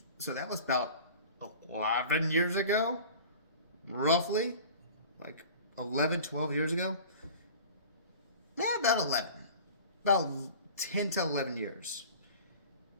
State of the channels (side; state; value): both; inverted; correlation -0.41